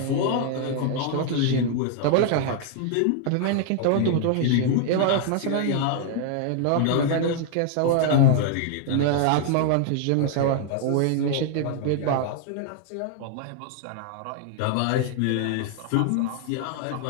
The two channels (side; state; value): both; different; correlation 0.00